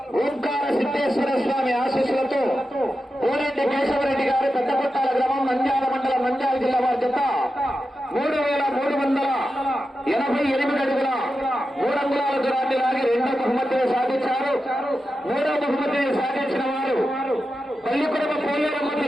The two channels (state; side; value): normal; both; correlation 0.90